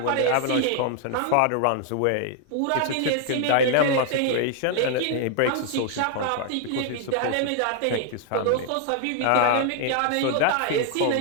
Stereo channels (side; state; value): both; different; correlation 0.00